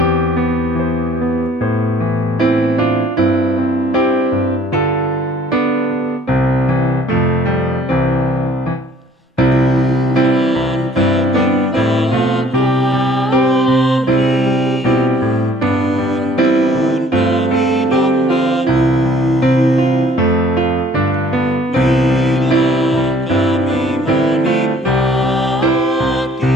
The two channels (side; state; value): both; normal; correlation 0.56